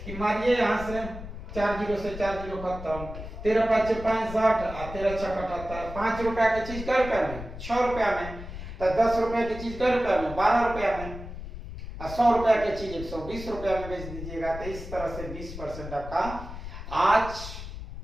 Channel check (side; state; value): left; noise; rumble, 10 dB below the sound